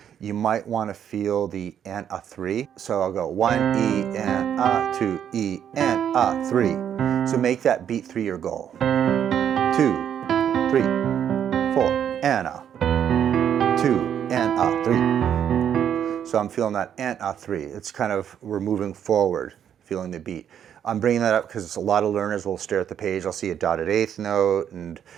you might want to feel the and a 3. So I'll go 1 E and 2 E and 3. So make that beat 3 your goal. 2, 3. and a, 2 and a, 3. So I'm feeling that and a 3. It's kind of, we're moving forward, feeling the beat. I'm bringing that up because a lot of learners will stare at the page. I'll see a dotted eighth note and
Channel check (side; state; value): left; quieter; 9.2 dB